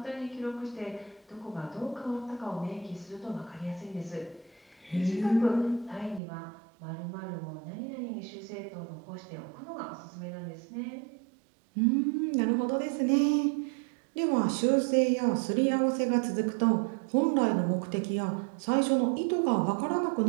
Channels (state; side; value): drops out; left; at 6.2 s